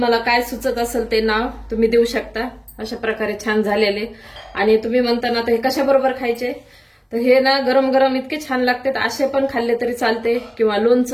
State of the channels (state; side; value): identical; both; correlation 1.00